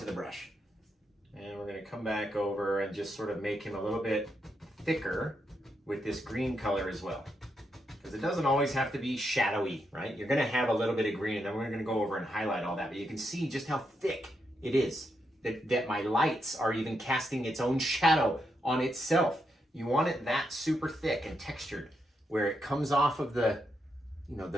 the brush. And we're gonna come back over and just sort of make him a little bit thicker with this green color as well. Because it doesn't always have to be shadowy, right? You're gonna have a little bit of green and then we're gonna go over and highlight all that, but you can see just how thick it is, that my lights are even casting its own shadow on itself. You want it that super thick and textured where it comes off of the, you know,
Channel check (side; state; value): both; normal; correlation 0.82